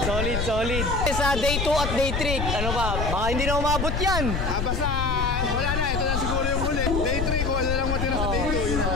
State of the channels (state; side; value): noise; left; rumble, 1 dB below the sound